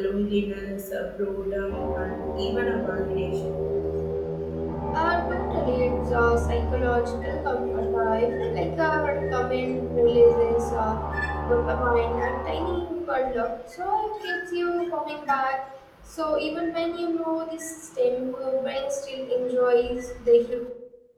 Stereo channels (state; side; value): identical; both; correlation 1.00